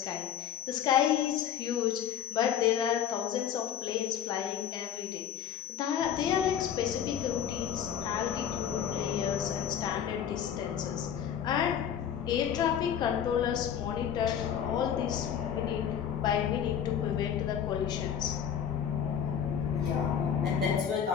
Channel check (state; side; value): quieter; right; 8.9 dB